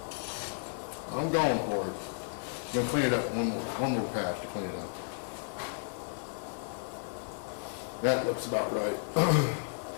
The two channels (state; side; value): silent; right; 56 dB below the other